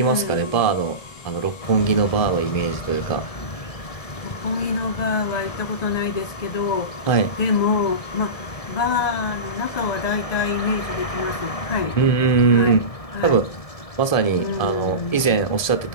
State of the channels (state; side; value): late; right; 1.7 ms